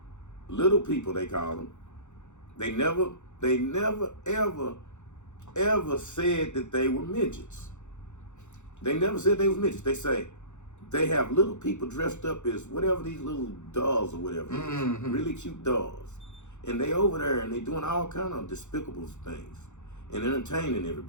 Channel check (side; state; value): right; late; 0.84 ms